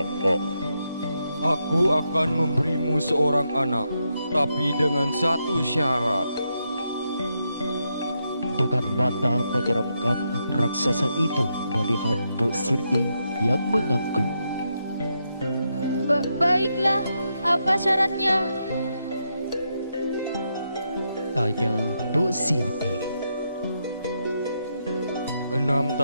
Aku akan memberimu seorang anak, tapi dengan satu syarat. Dengan mata menyeramkan, raksasa itu melihat Mbok Sirni yang mengangguk. Baiklah, apa syaratnya? Tanya Mbok Sirni. 6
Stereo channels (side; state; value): both; inverted; correlation -0.82